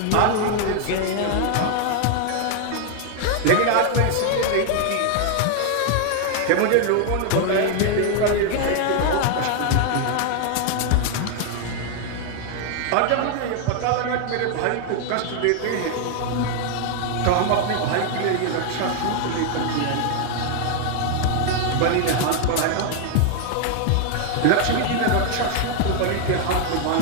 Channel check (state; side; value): different; both; correlation 0.00